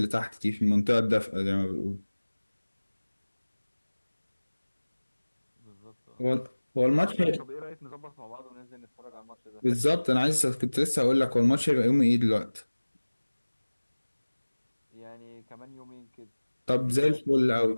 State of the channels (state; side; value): inverted; both; correlation -1.00